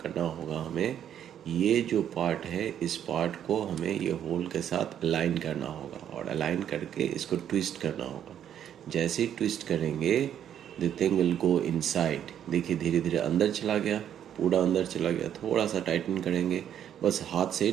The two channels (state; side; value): quieter; left; 9.8 dB